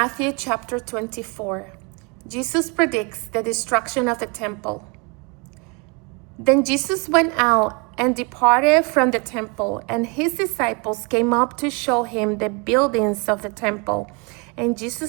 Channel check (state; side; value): quieter; left; 31.0 dB